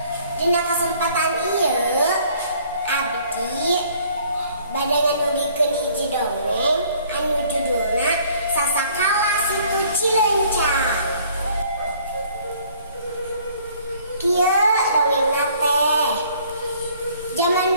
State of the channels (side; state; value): both; inverted; correlation -0.58